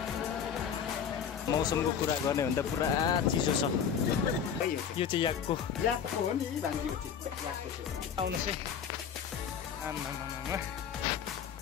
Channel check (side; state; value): right; quieter; 7.7 dB